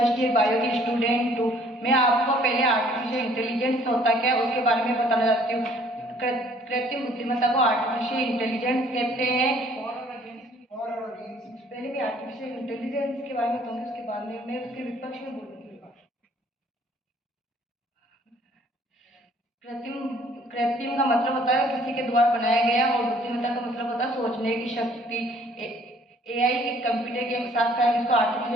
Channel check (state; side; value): normal; both; correlation 0.58